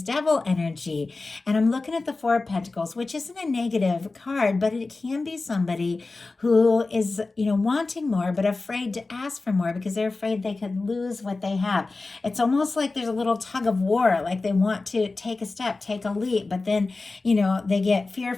Devil energy. And I'm looking at the Four of Pentacles, which isn't a negative card, but it can be somebody who is, wanting more, but afraid to ask for more because they're afraid they could lose what they have. It's almost like there's a little tug of war, like they want to take a step, take a leap, but then, they get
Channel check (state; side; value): quieter; right; 3.6 dB